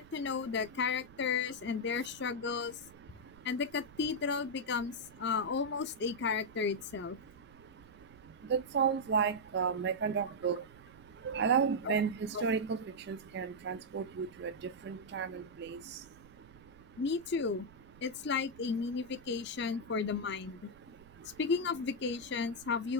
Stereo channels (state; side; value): noise; right; rumble, 22 dB below the sound